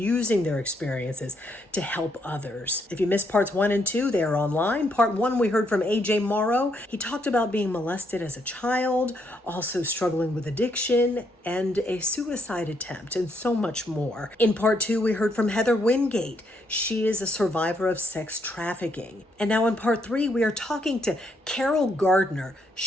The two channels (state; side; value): normal; both; correlation 0.75